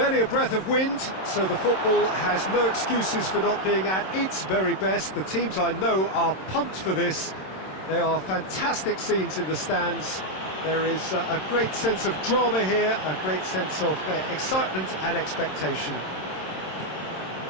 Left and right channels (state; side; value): late; right; 27 ms